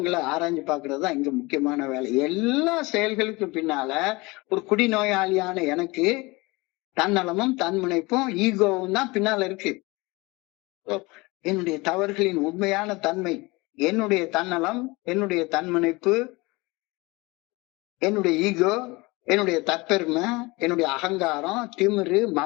ஆராய்ஞ்சு பாக்குறது தான் இங்க முக்கியமான வேலை. எல்லா செயல்களுக்கு பின்னால ஒரு குடிநோயாளியான எனக்கு தன்னலமும் தன்முனைப்பும் ஈகோவும் தான் பின்னால இருக்கு. என்னுடைய தவறுகளின் உண்மையான தன்மை, என்னுடைய தன்னலம், என்னுடைய தன்முனைப்பு, என்னுடைய ஈகோ, என்னுடைய தற்பெருமை, என்னுடைய அகங்காரம், திமிரு,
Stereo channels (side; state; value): right; quieter; 23.9 dB